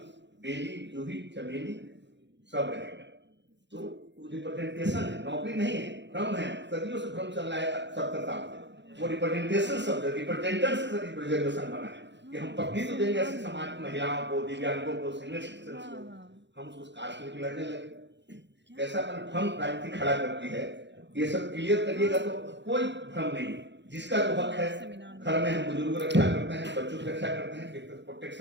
बेली, जूही, चमेली सब रहेगा। तो रिप्रेजेंटेशन है, नौकरी नहीं है, भ्रम है। सदियों से भ्रम चल रहा है 70 साल से। वो रिप्रेजेंटेशन शब्द रिप्रेजेंटेशन से रिप्रेजेंटेशन बना है कि हम पत्नी तो देंगे ऐसे समाज की महिलाओं को, दिव्यांगों को, सीनियर सिटीजन को। हम उसको कास्ट लेके लड़ने लगे। कैसा भ्रम राजनीति खड़ा करती है। ये सब क्लियर करिएगा तो कोई भ्रम नहीं। जिसका जो हक है, घर में हम बुजुर्गों की रक्षा करते हैं, बच्चों की रक्षा करते हैं, एक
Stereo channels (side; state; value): left; late; 0.52 ms